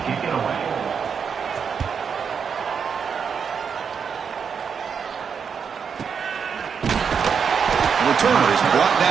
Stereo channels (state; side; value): quieter; left; 6.6 dB